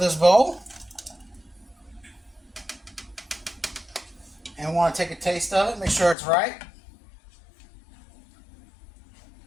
bowl. And we want to take a taste of it, make sure it's right.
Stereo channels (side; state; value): right; drops out; at 6.2 s